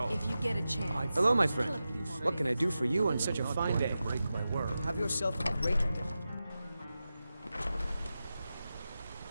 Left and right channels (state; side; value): inverted; both; correlation -0.92